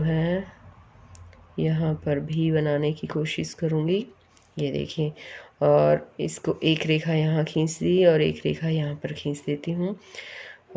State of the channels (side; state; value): both; identical; correlation 1.00